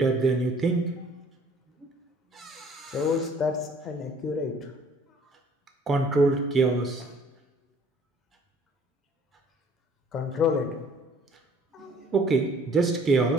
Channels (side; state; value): both; normal; correlation 0.56